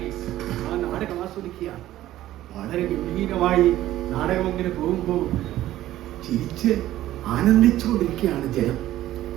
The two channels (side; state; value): left; quieter; 14.2 dB